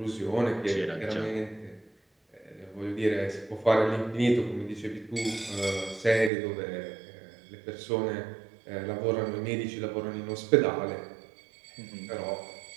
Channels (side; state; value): left; drops out; at 6.3 s